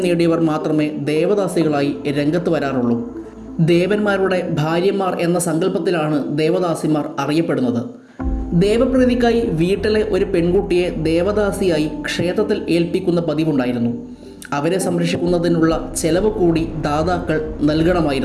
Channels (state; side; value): identical; both; correlation 1.00